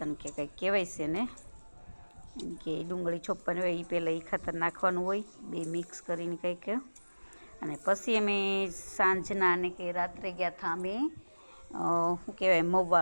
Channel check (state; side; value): inverted; both; correlation -1.00